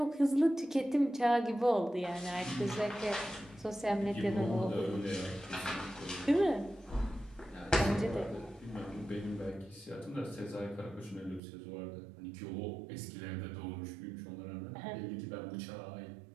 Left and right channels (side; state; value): left; drops out; at 11.4 s